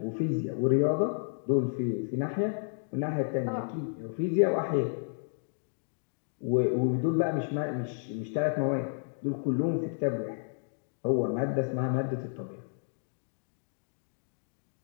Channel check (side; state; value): right; silent; digital silence